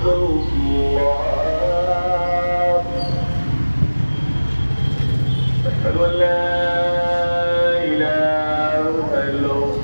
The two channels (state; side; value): inverted; both; correlation -1.00